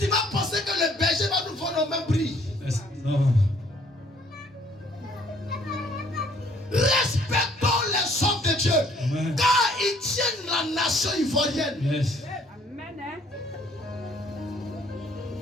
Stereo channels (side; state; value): both; normal; correlation 0.61